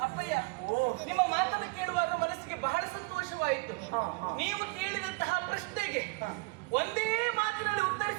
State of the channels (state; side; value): quieter; left; 27.6 dB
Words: ಅಪ್ಪಯ್ಯ, ನಿಮ್ಮ ಮಾತನ್ನು ಕೇಳುವಾಗ ಮನಸ್ಸಿಗೆ ಬಹಳ ಸಂತೋಷವಾಯಿತು. ನೀವು ಕೇಳಿದಂತಹ ಪ್ರಶ್ನೆಗೆ ಒಂದೇ ಮಾತಿನಲ್ಲಿ